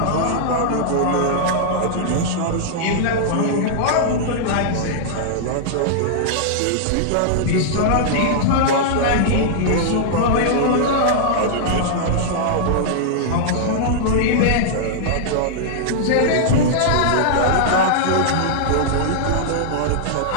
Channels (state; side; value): different; both; correlation -0.01